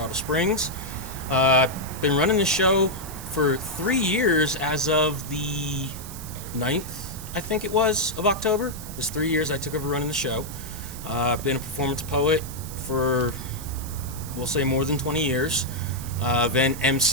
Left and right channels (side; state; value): right; noise; hiss, 13 dB below the sound